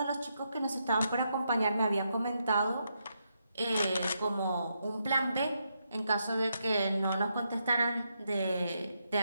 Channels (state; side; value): inverted; both; correlation -0.81